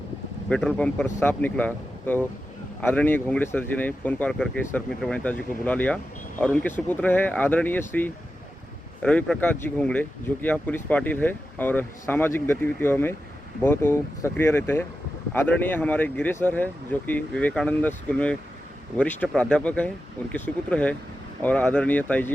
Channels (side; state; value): both; normal; correlation 0.91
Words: पेट्रोल पंप पर सांप निकला, तो आदरणीय घोंगड़े सर जी ने फ़ोन कॉल करके सर्पमित्र वनिता जी को बुला लिया और उनके सुपुत्र है आदरणीय श्री रवि प्रकाश जी घोंगड़े, जो कि यहाँ पुलिस पाटिल है और सामाजिक गतिविधियों में बहुत वो सक्रिय रहते हैं। आदरणीय हमारे गिरे सर है, जो कि विवेकानंद स्कूल में वरिष्ठ प्राध्यापक है, उनके सुपुत्र है। और आदरणीय ताई